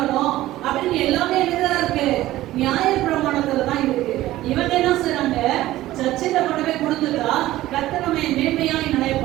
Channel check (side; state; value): left; quieter; 15.7 dB